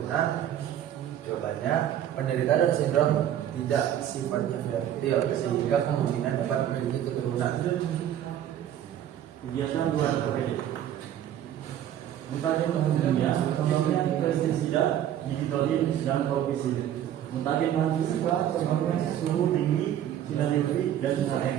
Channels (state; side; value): quieter; left; 10.9 dB